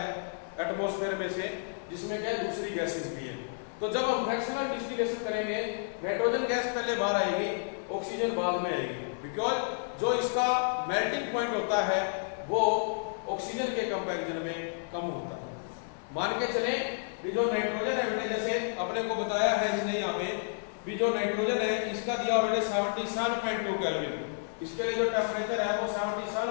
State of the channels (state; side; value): silent; right; 57 dB below the other